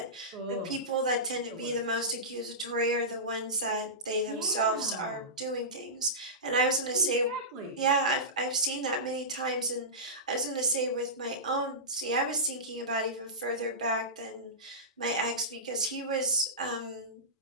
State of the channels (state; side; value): normal; both; correlation -0.18